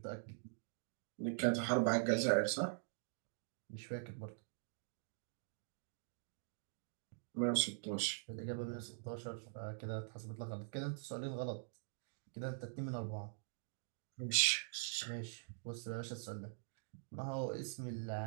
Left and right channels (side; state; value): left; silent; digital silence